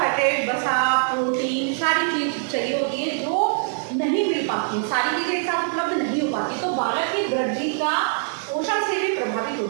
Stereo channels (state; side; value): silent; left; digital silence